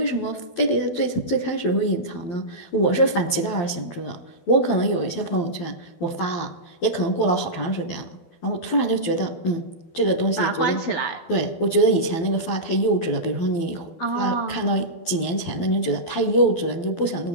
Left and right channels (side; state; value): right; late; 12 ms